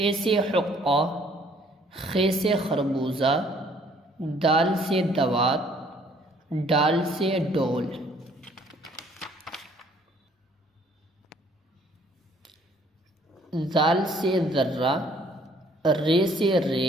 سے حقہ، خے سے خربوزہ، دال سے دوات، ڈال سے ڈول۔ زال سے ذرہ، رے سے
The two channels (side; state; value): both; normal; correlation 0.61